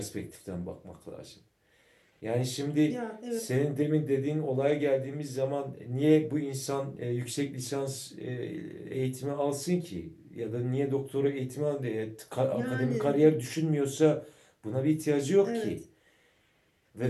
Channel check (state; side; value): identical; both; correlation 1.00